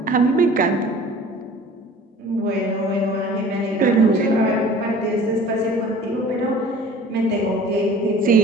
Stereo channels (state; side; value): normal; both; correlation 0.46